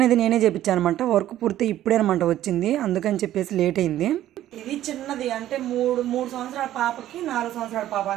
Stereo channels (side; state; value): left; quieter; 13.0 dB